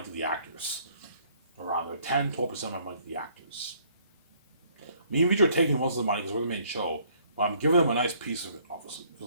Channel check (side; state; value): both; inverted; correlation -0.63